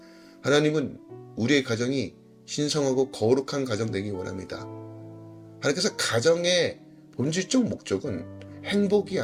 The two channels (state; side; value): identical; both; correlation 1.00